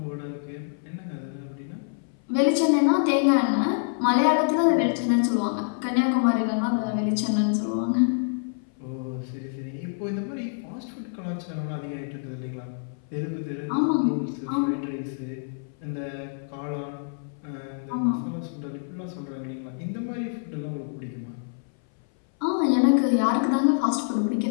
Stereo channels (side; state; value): right; silent; 60 dB below the other